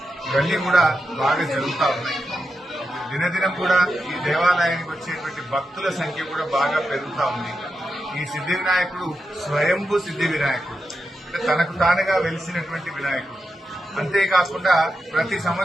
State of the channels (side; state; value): both; normal; correlation 0.88